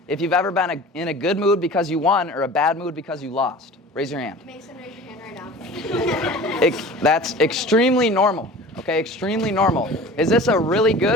if you've ever been in a good mood because you won or a bad mood because you lost. Raise your hand. Mason, raise your hand right now. That's extremely normal. Okay, extremely normal. Is this a really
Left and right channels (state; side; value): normal; both; correlation 0.40